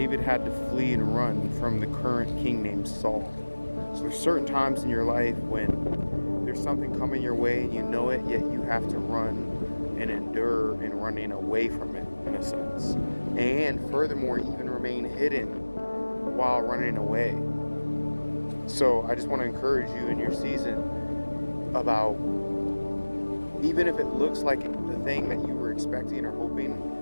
had to flee and run from the current king named Saul. So there's certain times in your life when there's something coming your way and you know it, yet you have to run and endure in running away from it, in a sense. And furthermore, even remain hidden while running away. So I just want to encourage you in your season about, even if it looks like the thing that you were expecting or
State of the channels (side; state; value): both; inverted; correlation -1.00